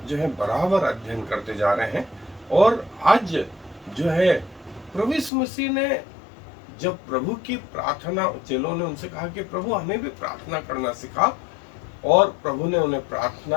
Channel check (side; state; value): right; drops out; at 5.3 s